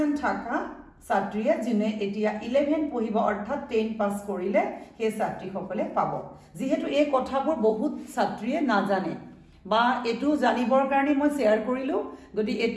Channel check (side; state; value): both; identical; correlation 1.00